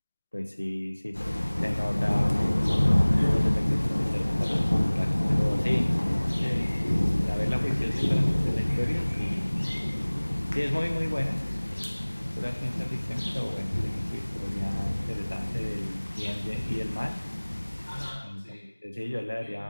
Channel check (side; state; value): both; inverted; correlation -1.00